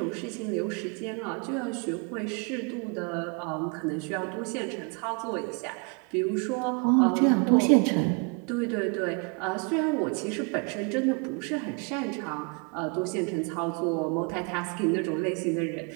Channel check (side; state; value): left; quieter; 34.7 dB